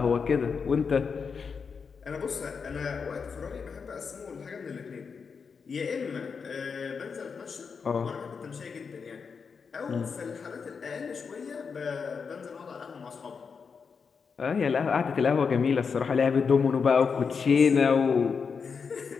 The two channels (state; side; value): quieter; right; 5.7 dB